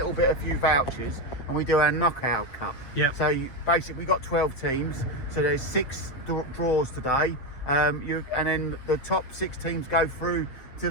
few vouchers, and we do our knockout cup. Yep. So basically we got 12 teams, so there's 6 draws today, and then the top 6 teams go through to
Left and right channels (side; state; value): right; late; 7.8 ms